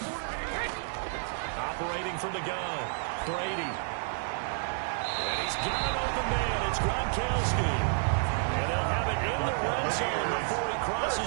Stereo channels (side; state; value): left; silent; digital silence